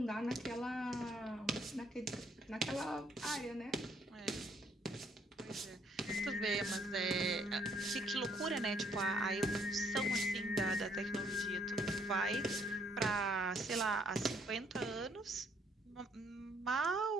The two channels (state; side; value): normal; both; correlation 0.67